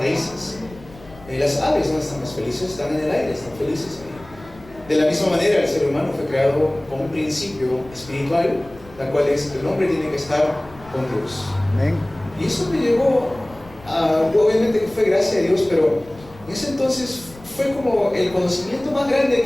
Las aves, ¿dónde están más felices? Están en el aire, están felices ahí. De la misma manera, el ser humano fue creado con un principio espiritual, la cual es que el hombre tiene que estar con Dios. Amén. Y eso me llevó obviamente que fue gracia de Dios, pero en ese entonces fue como el conocimiento más grande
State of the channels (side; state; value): left; noise; rumble, 21 dB below the sound